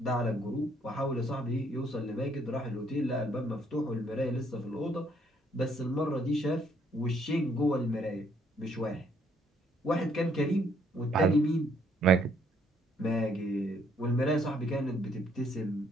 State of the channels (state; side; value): normal; both; correlation 0.67